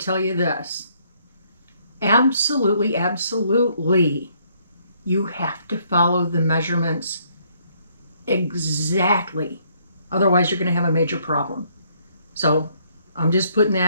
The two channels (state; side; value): inverted; both; correlation -0.68